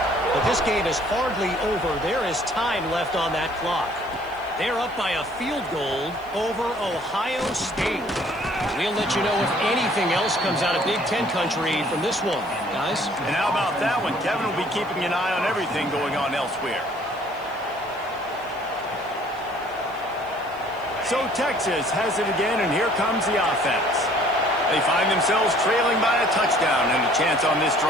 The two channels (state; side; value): noise; left; hiss, 27 dB below the sound